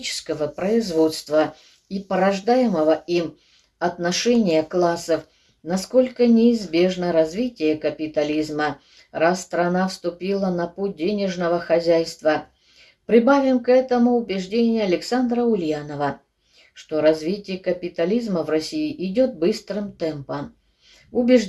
производства и порождаемого им отношения классов, насколько неизбежно развитие капитализма, раз страна вступила на путь денежного хозяйства. Прибавим к этому убеждение Александра Ульянова, что развитие капитализма в России идет быстрым темпом.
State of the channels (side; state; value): both; identical; correlation 1.00